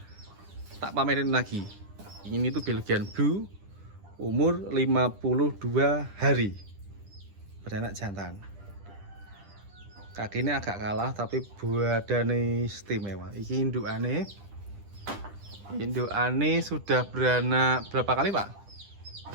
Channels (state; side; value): late; left; 10 ms